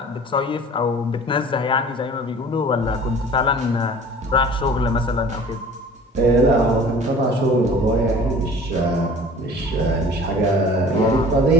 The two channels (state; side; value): normal; both; correlation 0.45